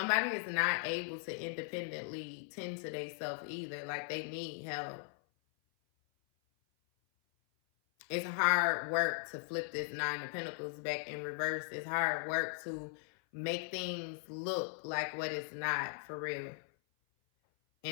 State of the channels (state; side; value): silent; right; 52 dB below the other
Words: is not able to independently tend to themselves either. Like they need help. It's hard work to flip this Nine of Pentacles back in reverse. It's hard work to make things look like what it's not, for real.